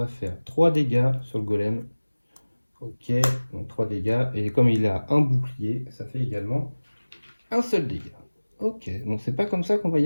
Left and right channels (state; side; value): inverted; both; correlation -1.00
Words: faire 3 dégâts sur le golem. Ok, donc 3 dégâts. Et comme il a un bouclier, ça fait également un seul dégât. Ok, donc c'est pas comme ça qu'on va